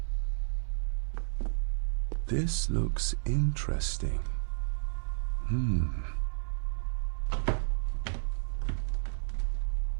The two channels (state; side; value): silent; left; digital silence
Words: This looks interesting.